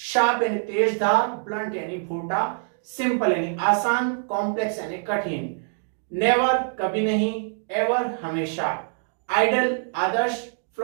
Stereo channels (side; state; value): left; silent; 62 dB below the other